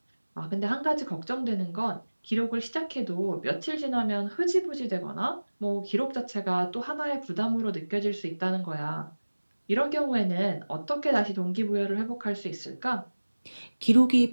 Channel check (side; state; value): both; inverted; correlation -1.00